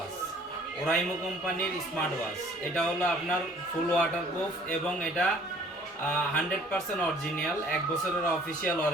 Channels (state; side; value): normal; both; correlation 0.55